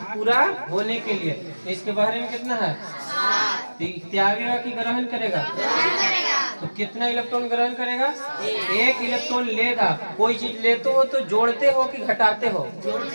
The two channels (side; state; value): both; inverted; correlation -1.00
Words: पूरा होने के लिए। इसके बहरे में कितना है, त्यागेगा कि ग्रहण करेगा, तो कितना इलेक्ट्रॉन ग्रहण करेगा? एक इलेक्ट्रॉन लेगा। कोई चीज लेते हो तो जोड़ते हो कि घटाते हो?